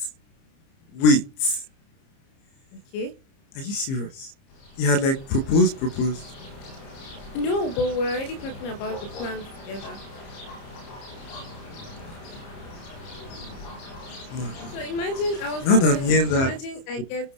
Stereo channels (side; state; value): right; late; 30 ms